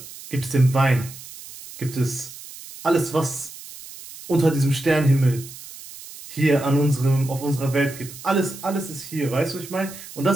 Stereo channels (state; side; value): noise; right; hiss, 15 dB below the sound